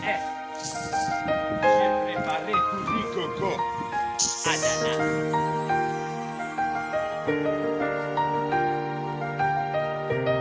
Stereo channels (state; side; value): identical; both; correlation 1.00